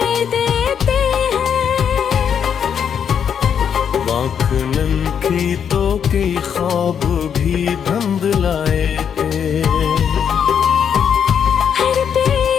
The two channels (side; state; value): right; quieter; 7.9 dB